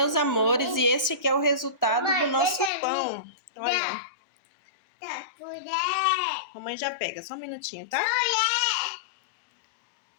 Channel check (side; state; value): right; drops out; at 2.7 s